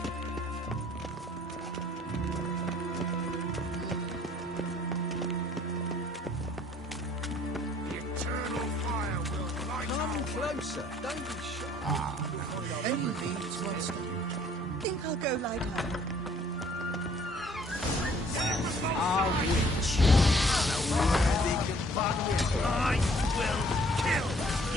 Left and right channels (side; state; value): both; normal; correlation 0.59